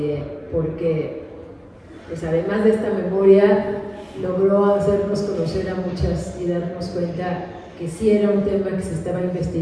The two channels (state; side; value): identical; both; correlation 1.00